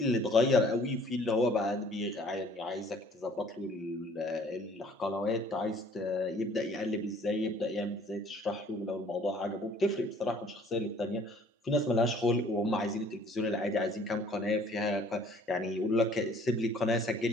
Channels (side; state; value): both; normal; correlation 0.55